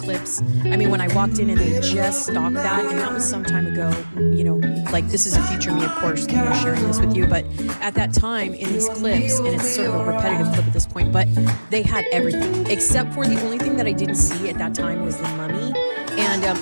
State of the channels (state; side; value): inverted; both; correlation -1.00